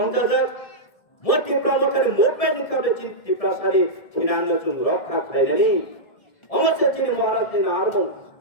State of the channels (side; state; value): right; late; 1.7 ms